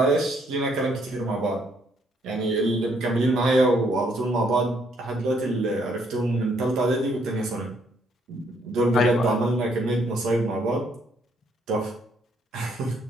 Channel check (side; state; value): both; normal; correlation 0.70